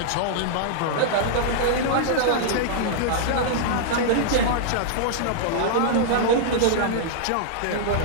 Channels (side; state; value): both; different; correlation -0.02